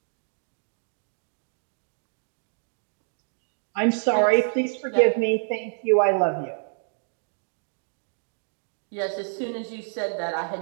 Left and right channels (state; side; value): silent; left; digital silence